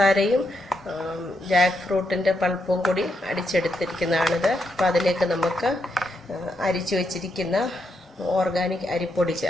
ജാക്ക് ഫ്രൂട്ടിൻ്റെ പൾപ്പും കൂടി അടിച്ചെടുത്തിരിക്കുന്നതാണിത്. അപ്പോൾ അതിലേക്ക് നമുക്ക് അരിച്ചു വച്ചിരിക്കുന്ന ഓർഗാനിക് അരിപ്പൊടി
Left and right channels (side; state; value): both; normal; correlation 0.81